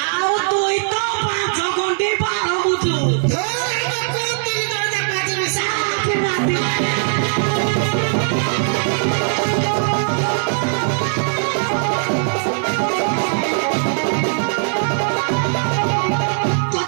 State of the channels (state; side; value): silent; left; digital silence